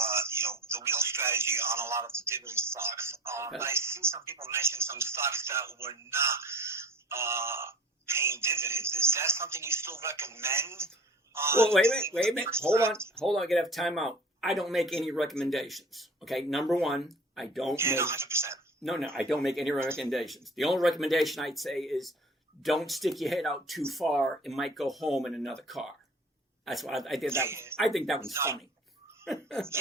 the wheel strategy on a lot of the dividend stocks. Okay. But I see some people mention some stocks that were not paying dividends. Is that something you still recommend? Well, wait a minute. Hold on. I gotta have time out. I don't make any recommendations. Okay, number one, I don't make... 100%. No, I don't make any recommendations. The only recommendation I'd say is don't stick your head out too far. It might go home in another car. That's what I did. I think that one's funny. I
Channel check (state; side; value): normal; both; correlation 0.42